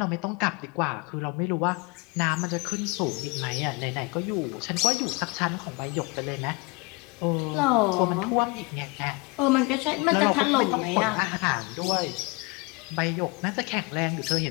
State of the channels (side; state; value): right; quieter; 27.6 dB